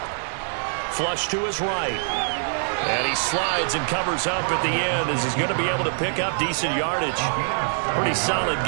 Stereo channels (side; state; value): left; silent; 63 dB below the other